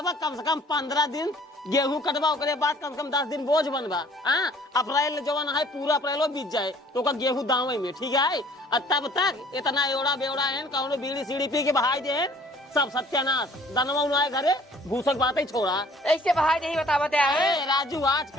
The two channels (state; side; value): normal; both; correlation 0.55